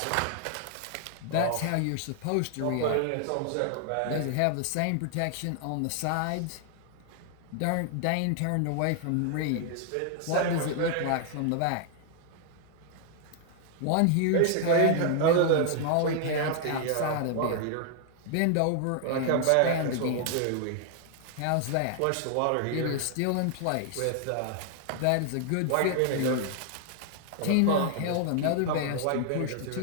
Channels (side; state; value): both; different; correlation 0.00